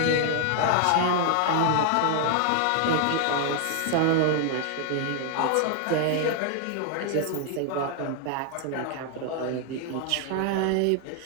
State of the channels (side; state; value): both; different; correlation 0.00